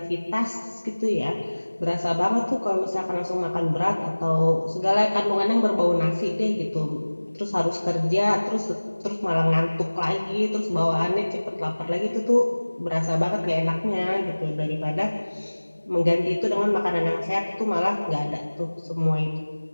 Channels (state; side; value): inverted; both; correlation -1.00